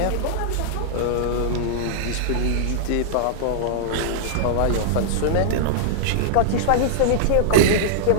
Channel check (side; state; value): both; different; correlation -0.02